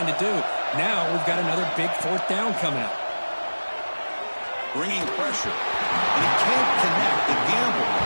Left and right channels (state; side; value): inverted; both; correlation -1.00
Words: to do. Now we've got another big 4th down coming up. Bringing pressure, and he can't connect. The gamble